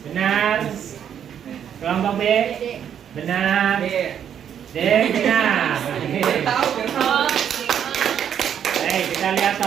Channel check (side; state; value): left; quieter; 9.0 dB